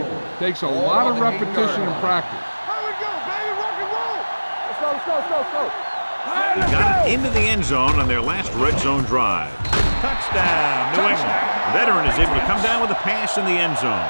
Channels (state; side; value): inverted; both; correlation -1.00